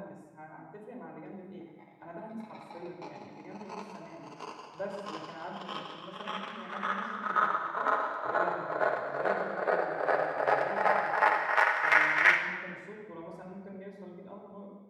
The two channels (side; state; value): both; identical; correlation 1.00